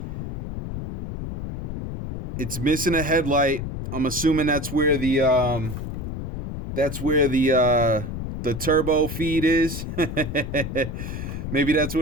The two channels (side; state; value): left; noise; rumble, 6 dB below the sound